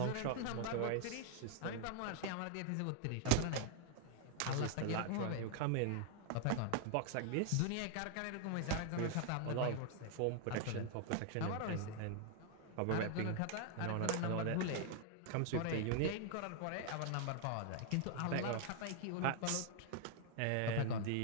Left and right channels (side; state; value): both; different; correlation 0.00